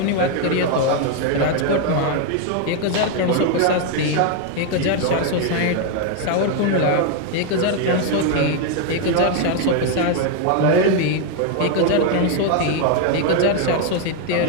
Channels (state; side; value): different; both; correlation 0.01